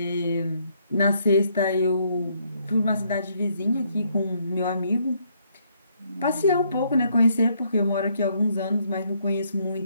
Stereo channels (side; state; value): both; inverted; correlation -0.71